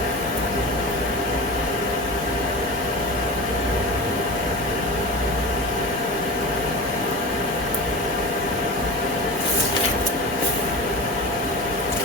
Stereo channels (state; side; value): normal; both; correlation 0.30